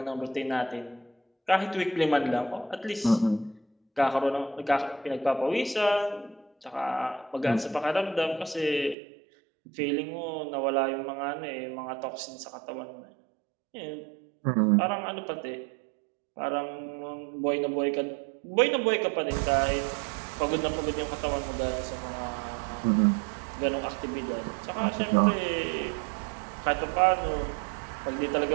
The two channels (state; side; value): drops out; left; at 9.0 s